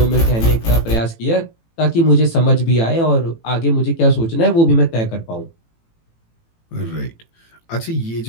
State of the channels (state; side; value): late; right; 18 ms